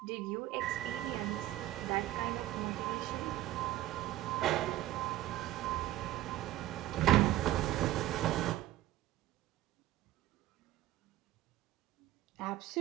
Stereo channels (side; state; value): left; quieter; 14.6 dB